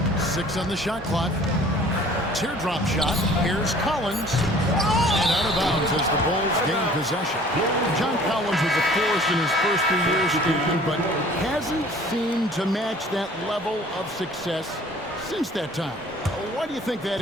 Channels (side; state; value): both; normal; correlation 0.51